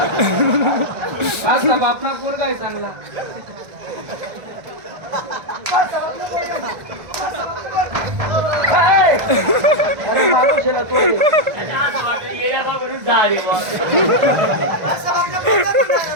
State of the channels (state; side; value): late; left; 1.5 ms